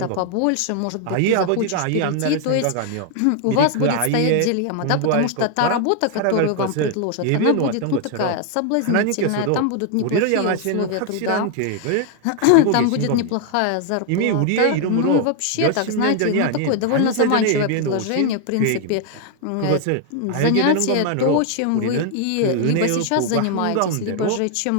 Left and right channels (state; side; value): different; both; correlation 0.00